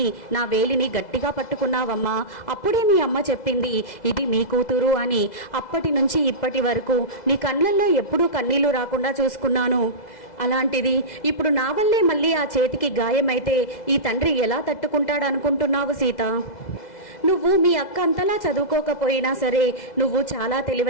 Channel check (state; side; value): late; right; 2.0 ms